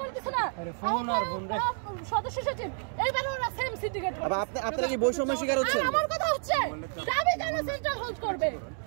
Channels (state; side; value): silent; left; 58 dB below the other